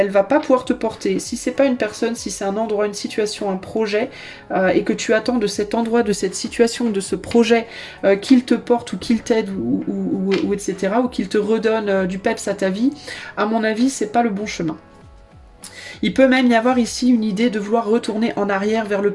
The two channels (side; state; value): both; identical; correlation 1.00